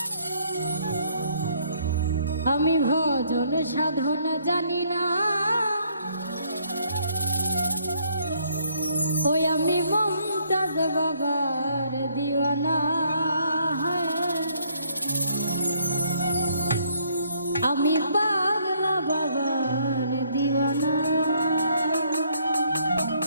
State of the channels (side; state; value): both; inverted; correlation -0.67